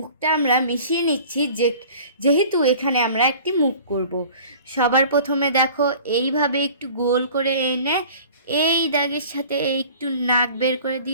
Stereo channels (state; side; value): inverted; both; correlation -0.45